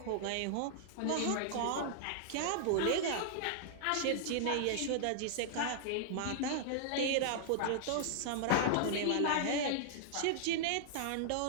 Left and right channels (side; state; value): both; different; correlation -0.01